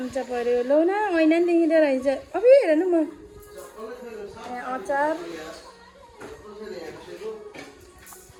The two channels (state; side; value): identical; both; correlation 1.00